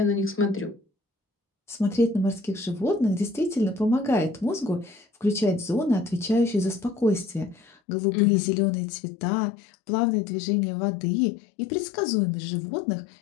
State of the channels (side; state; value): right; drops out; at 7.7 s